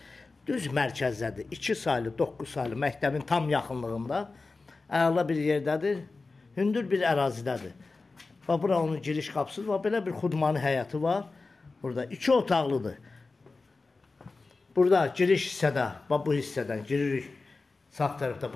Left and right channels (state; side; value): quieter; right; 3.8 dB